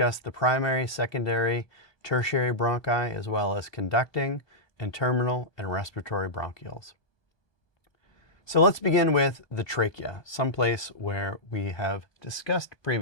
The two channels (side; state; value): right; late; 1.2 ms